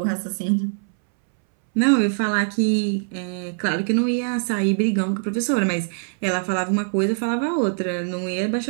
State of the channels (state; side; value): silent; left; 64 dB below the other